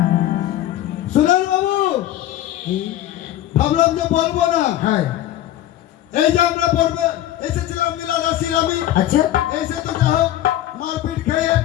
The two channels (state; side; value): quieter; right; 13.1 dB